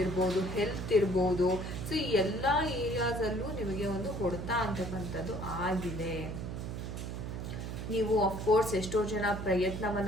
ಇರ್ಬೋದು, ಹೆಲ್ತ್ ಇರ್ಬೋದು, ಸೊ ಈ ಎಲ್ಲ ಏರಿಯಾಸಲ್ಲೂ ನಿಮಗೆ ಒಂದು ಹೊಡೆತ ಅಂತಕ್ಕಂಥದ್ದು ಆಗಿದೆ. ನೀವು ಅಫ್ಕೋರ್ಸ್ ಎಷ್ಟೋ ಜನ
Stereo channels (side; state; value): right; noise; hum, 6 dB below the sound